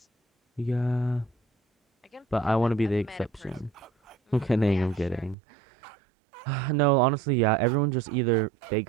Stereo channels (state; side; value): drops out; left; at 5.4 s